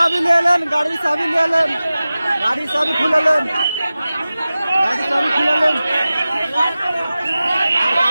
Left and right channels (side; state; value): both; inverted; correlation -0.96